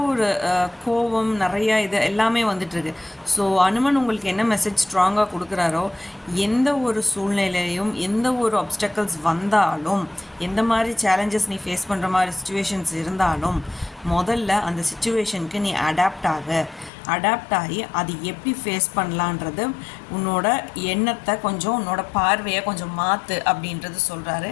ஒரு கோபம் நிறையா இது எல்லாமே வந்துட்டுருக்கு. ஸோ அனுமன் உங்களுக்கு என்ன மெசேஜ் ஸ்ட்ராங்காக கொடுக்குறாரோ, எந்த ஒரு சூழ்நிலையிலையும் எந்த ஒரு ஆப்ஸ்டக்கிள்ஸ் வந்தாலும், எந்த மாதிரி சேலஞ்சஸ் நீ ஃபேஸ் பண்ணுற மாதிரி சுச்சுவேஷன்ஸ் இருந்தாலும், முதல்ல அந்த சுச்சுவேஷனுக்கு நீ அடாப்ட் ஆகி அது எப்படி ஃபேஸ் பண்ணலான்றது உன்னோட எண்ணத்தை கொஞ்சம், உன்னோட பார்வையை கொஞ்சம் மாற்று அப்படின்றது சொல்கிறாரு.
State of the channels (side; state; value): right; drops out; at 16.9 s